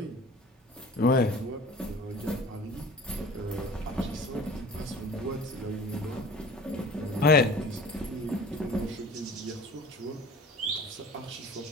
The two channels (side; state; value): both; normal; correlation 0.43